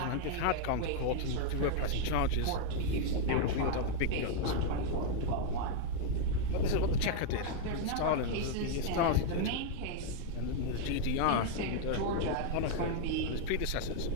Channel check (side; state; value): both; different; correlation 0.00